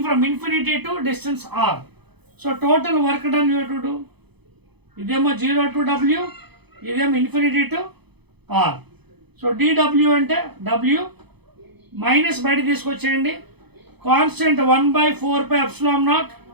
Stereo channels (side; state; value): left; late; 0.98 ms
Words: from infinity to distance r. So total work done you to do. ఇదేమో 0 to w, ఇదేమో ఇన్ఫినిటీ టు ఆర్. సో dw అంటే w మైనస్ బయట తీసుకొచ్చేయండి. కాన్స్టెంట్ 1/4πε0.